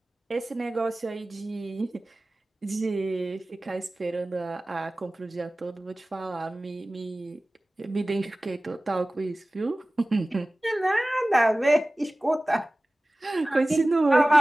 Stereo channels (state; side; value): normal; both; correlation 0.97